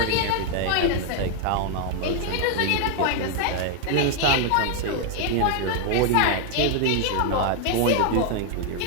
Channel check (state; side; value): different; both; correlation 0.00